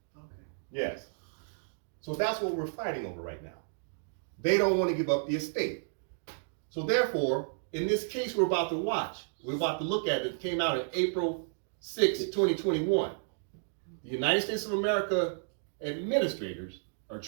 Okay. Yes. So that's what we're fighting over right now. They don't want to give up the estate. So therefore, in this case we're about to watch, we're about to look at it came out on April 6, 2021. The United States of America administrators are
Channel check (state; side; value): silent; left; digital silence